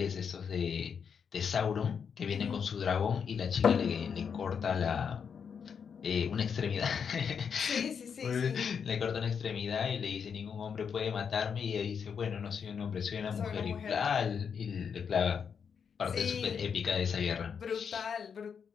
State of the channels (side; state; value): right; quieter; 6.8 dB